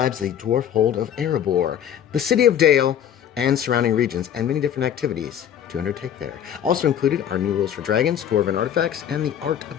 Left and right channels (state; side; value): quieter; right; 9.5 dB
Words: the dwarf hold of Erebor, the city of Dale, and surrounding regions, and many different activities to undertake there. Also included are new rules for dragons, dwarven artifacts, and the art